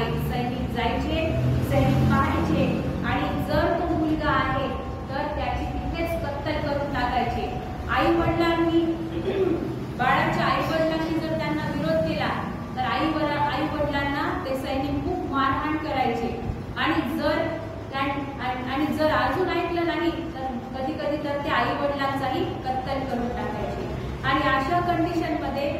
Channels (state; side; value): identical; both; correlation 1.00